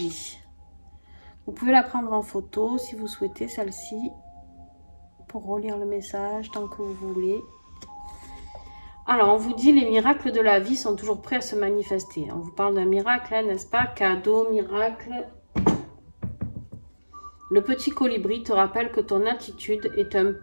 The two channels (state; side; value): inverted; both; correlation -1.00